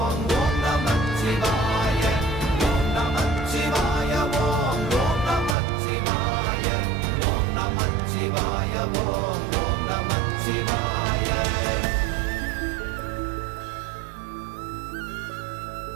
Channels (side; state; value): left; drops out; at 5.6 s